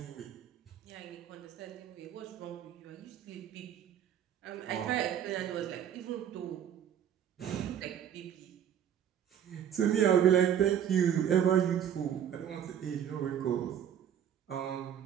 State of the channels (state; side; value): quieter; left; 9.4 dB